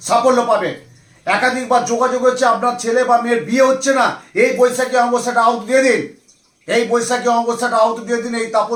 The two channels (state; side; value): identical; both; correlation 1.00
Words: সাফল্য পাবে। একাধিকবার যোগাযোগ হচ্ছে, আপনার ছেলে বা মেয়ের বিয়ে হচ্ছে না, এই বৈশাখী অমাবস্যাটা আউট দিয়ে দিন, এই বৈশাখী অমাবস্যাটা আউট দিয়ে দিন। এই